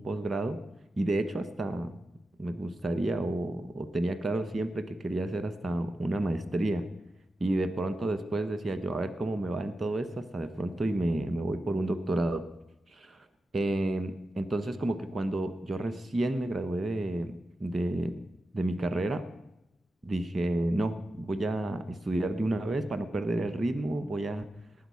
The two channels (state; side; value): normal; both; correlation 0.91